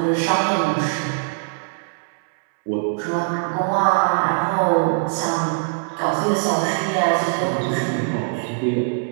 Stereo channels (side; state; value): left; silent; 65 dB below the other